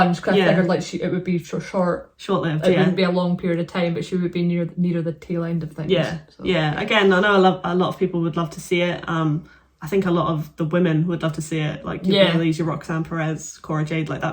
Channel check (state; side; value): identical; both; correlation 1.00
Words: because I figured like it would be short-lived. It wouldn't be a long period of time, but she would be near the tail end of things. Yeah, so, Again, I know a lot of people would love to see it. I think a lot of the women would love to see it, like your Baileys, your Roxanne Perez, Cora Jade, like